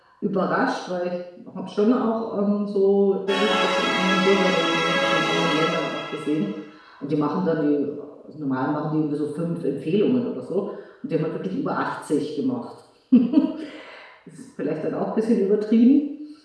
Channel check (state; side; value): identical; both; correlation 1.00